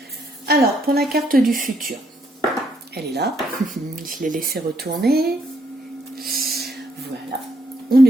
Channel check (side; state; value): both; normal; correlation 0.73